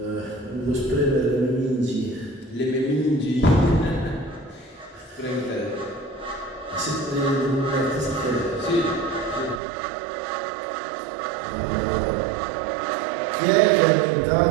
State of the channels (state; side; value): drops out; left; at 9.6 s